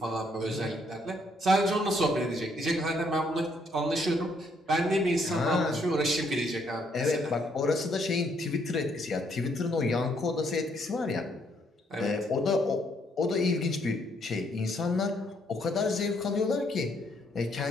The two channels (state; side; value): normal; both; correlation 0.70